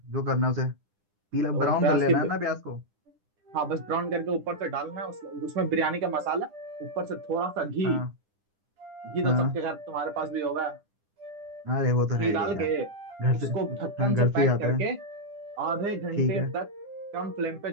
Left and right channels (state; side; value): late; left; 9.9 ms